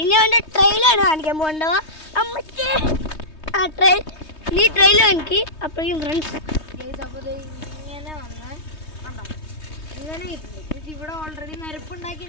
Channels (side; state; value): right; late; 3.2 ms